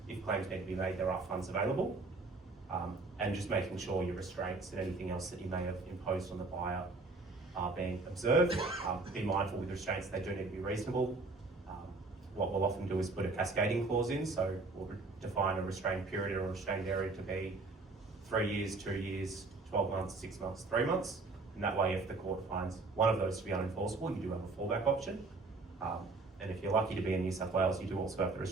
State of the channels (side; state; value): left; quieter; 3.6 dB